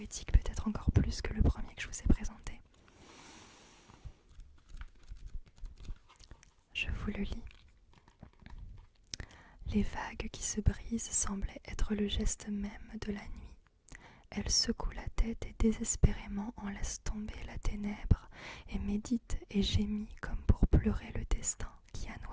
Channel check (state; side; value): identical; both; correlation 1.00